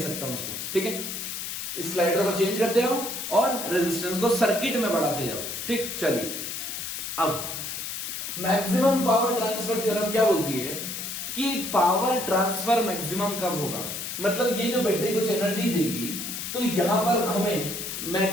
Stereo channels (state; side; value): noise; left; hiss, 5 dB below the sound